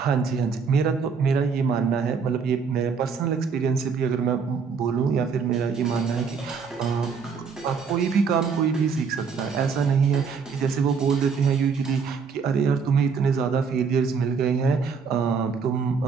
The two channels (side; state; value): left; quieter; 5.7 dB